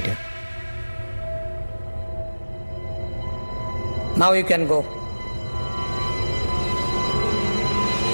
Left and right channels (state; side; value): inverted; both; correlation -1.00